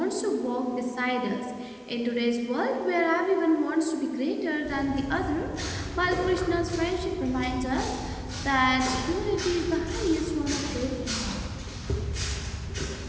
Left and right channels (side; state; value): both; identical; correlation 1.00